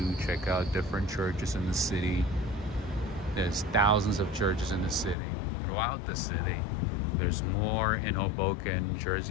check out different churches in the city. There's thousands of churches in the city, throughout the city. There's more in Hoboken,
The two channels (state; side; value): drops out; right; at 5.2 s